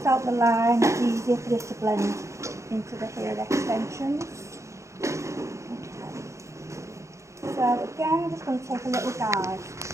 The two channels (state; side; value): late; left; 0.14 ms